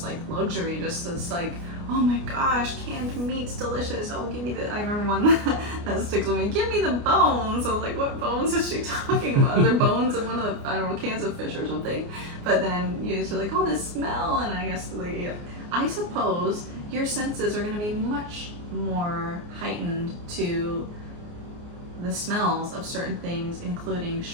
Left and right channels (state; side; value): late; left; 29 ms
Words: like luxury, just this like, oh my gosh, canned meat's delicious. Oh, give me I remember one that sticks with me. Give me the bones. I was like, what bones is she talking about? Is there bones in one of the, I don't know, cans of fish or something? But then you're just like, oh, this smell. And I guess, like, yeah. I suppose your senses are going to be much more heightened to the smells of certain things, including